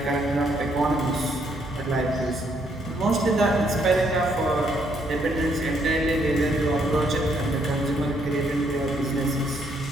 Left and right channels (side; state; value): both; normal; correlation 0.71